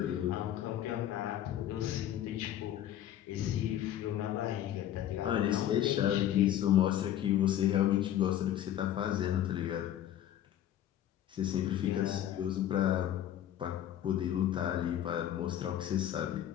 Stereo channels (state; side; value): quieter; right; 11.5 dB